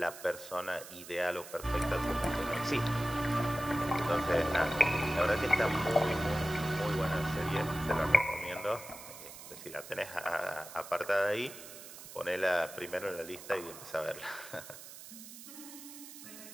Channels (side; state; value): right; noise; hiss, 14 dB below the sound